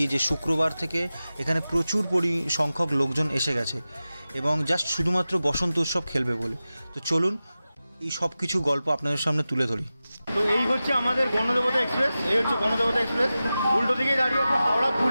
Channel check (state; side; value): inverted; both; correlation -0.95